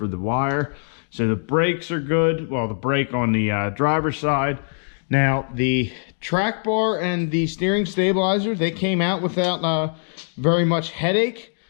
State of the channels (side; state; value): right; silent; digital silence